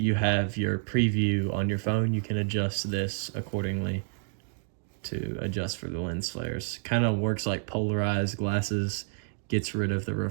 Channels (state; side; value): silent; left; digital silence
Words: have your preview on your phone, you can adjust this accordingly to adjust for the lens flares. Kind of works like polarized glasses, gets rid of the